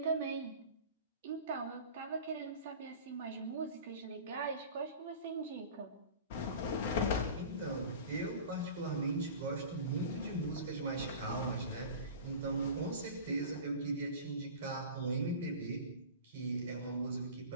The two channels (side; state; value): both; inverted; correlation -0.37